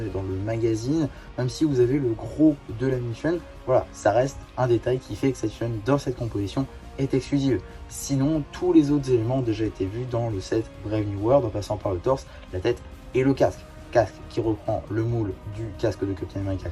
est dans le magazine, même si vous avez le gros de la mini-figurine, voilà, ça reste un détail qui fait que cette figurine dans cette composition est exclusive. Sinon, tous les autres éléments ont déjà été vus dans le set Brave New World, en passant par le torse, la tête et le casque. Casque qui reprend le moule du casque de Captain America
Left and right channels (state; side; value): identical; both; correlation 1.00